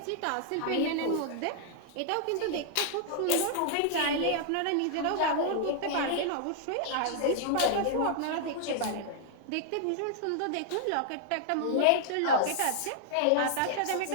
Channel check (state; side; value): different; both; correlation -0.01